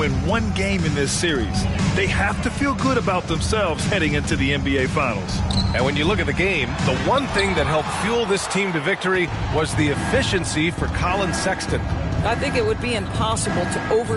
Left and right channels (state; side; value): identical; both; correlation 1.00